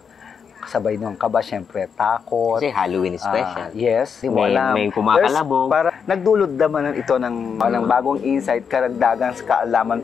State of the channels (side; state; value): right; quieter; 6.6 dB